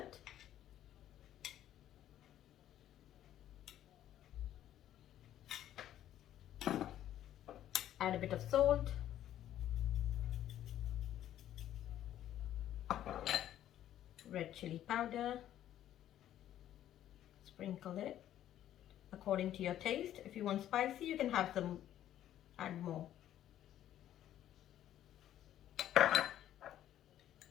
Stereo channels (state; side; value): quieter; right; 11.9 dB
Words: Add a bit of salt. Red chili powder. Sprinkle it according to your taste. If you want spicy, you can have some, add more.